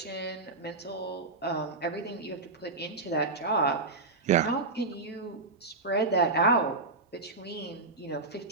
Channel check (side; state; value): left; quieter; 3.4 dB